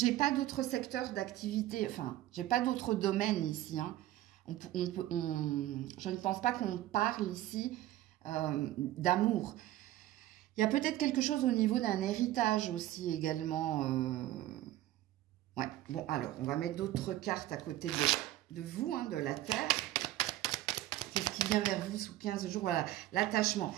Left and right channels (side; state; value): left; quieter; 14.7 dB